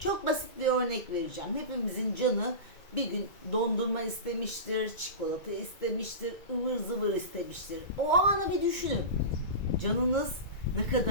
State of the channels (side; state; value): right; late; 2.2 ms